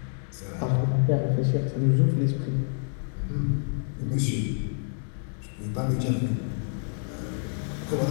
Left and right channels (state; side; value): silent; right; digital silence